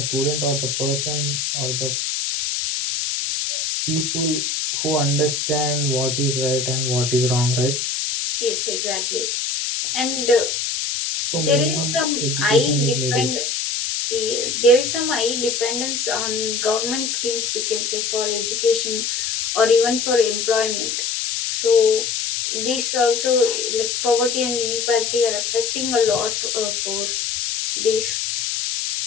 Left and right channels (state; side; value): noise; left; hiss, 1 dB below the sound